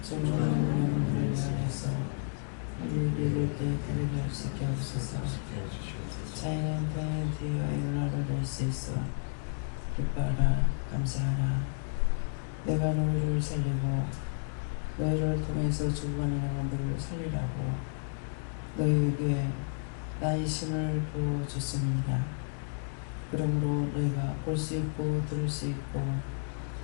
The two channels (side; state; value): right; silent; digital silence